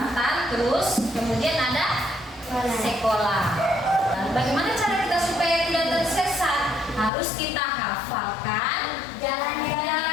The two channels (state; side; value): drops out; right; at 7.1 s